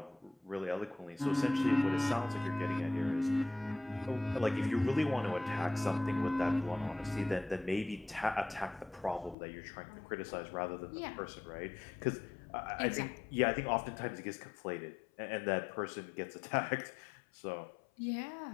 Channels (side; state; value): right; drops out; at 9.3 s